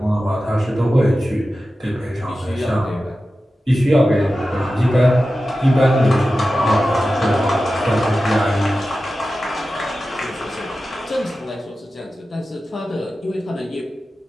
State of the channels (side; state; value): both; normal; correlation 0.93